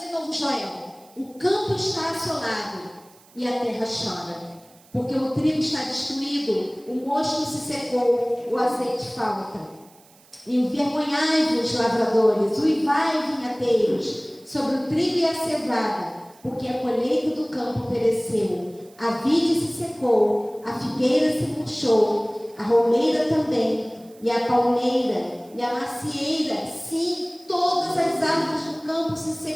novo Joel. O campo está assolado e a terra chora, porque o trigo está destruído, o mosto se secou, o azeite falta. Envergonhai-vos, lavradores, uivai, vinhateiros, sobre o trigo e a cevada, porque a colheita do campo pereceu, a vide se secou, a figueira se murchou, a romeira também, e a palmeira, e a macieira, sim, todas as árvores do campo se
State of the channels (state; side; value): noise; right; hiss, 28 dB below the sound